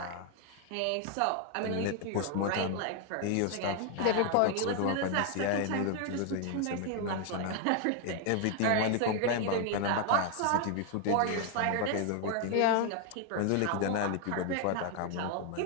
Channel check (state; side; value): different; both; correlation 0.00